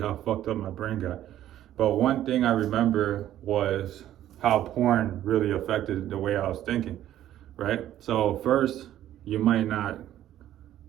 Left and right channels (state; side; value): quieter; left; 12.4 dB